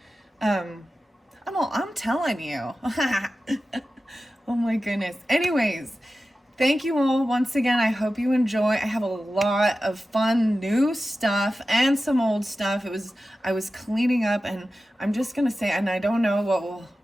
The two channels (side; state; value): both; normal; correlation 0.94